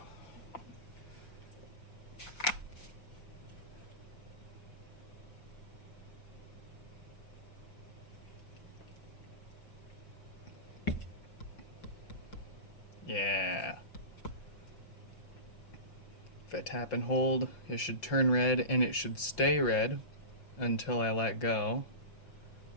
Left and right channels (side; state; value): right; late; 5.6 ms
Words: Yeah. If I tap and hold, it should turn red and it should stay red until I let go.